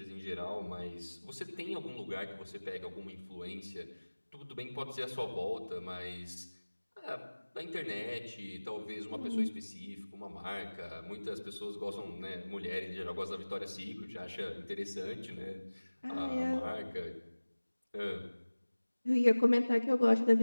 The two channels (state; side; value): inverted; both; correlation -1.00